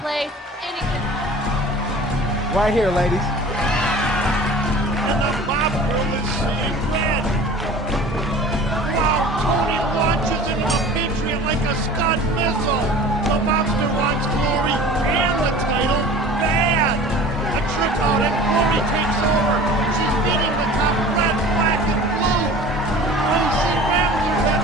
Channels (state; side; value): normal; both; correlation 0.42